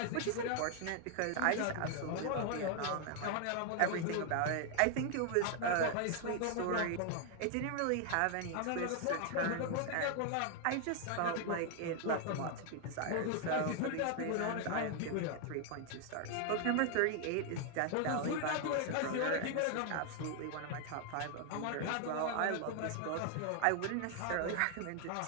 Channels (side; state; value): both; different; correlation 0.00